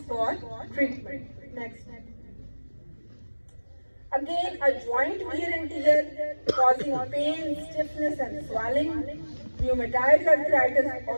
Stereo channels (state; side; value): inverted; both; correlation -1.00